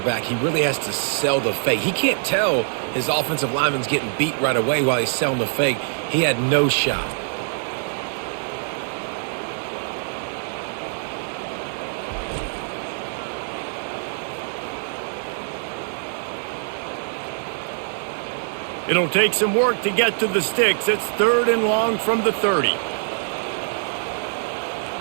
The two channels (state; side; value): silent; left; digital silence